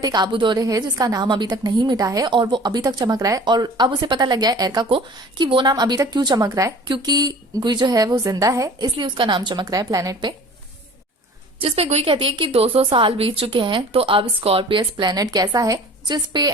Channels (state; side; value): normal; both; correlation 0.45